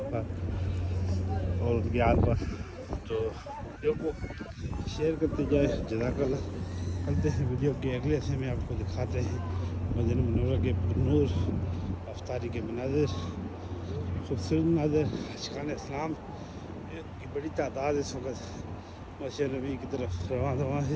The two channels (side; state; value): both; identical; correlation 1.00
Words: پر اور ان کی آل پر۔ تو ویڈیو کو شیئر کرتے جائیں، جزاک اللہ۔ کرتے ہیں ویڈیو کے اگلے حصے میں، آپ کو دکھاتے ہیں مدینہ منورہ کے نور افطاری کے مناظر، خوبصورت مناظر۔ عاشقان اسلام کی بڑی تعداد اس وقت مسجد نبی کی طرف رواں